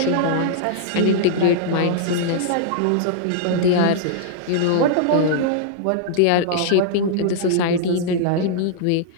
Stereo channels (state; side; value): different; both; correlation -0.02